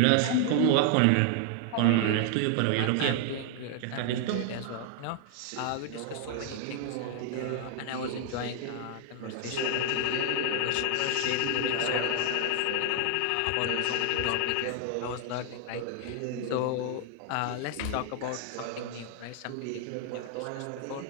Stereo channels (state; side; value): different; both; correlation 0.00